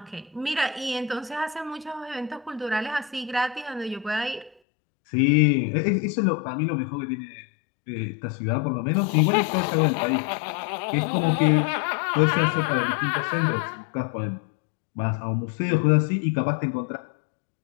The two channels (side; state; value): right; drops out; at 4.5 s